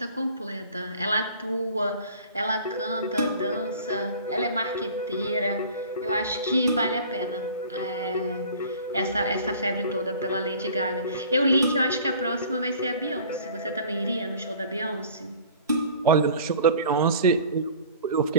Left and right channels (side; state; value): both; inverted; correlation -0.45